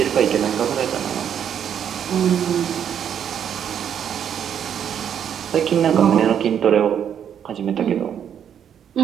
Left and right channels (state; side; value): quieter; left; 8.8 dB